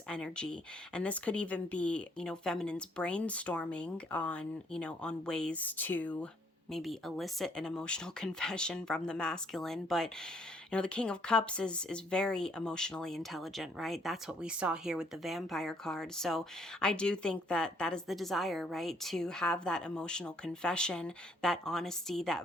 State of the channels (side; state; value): both; normal; correlation 0.66